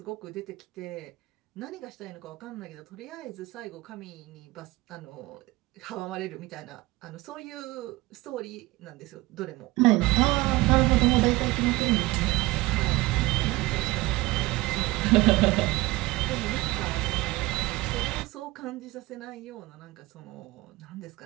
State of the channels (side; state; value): left; quieter; 20.3 dB